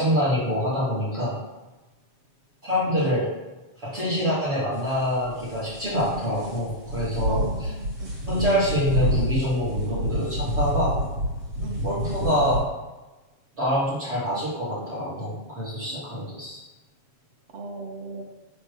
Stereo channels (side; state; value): left; late; 7.3 ms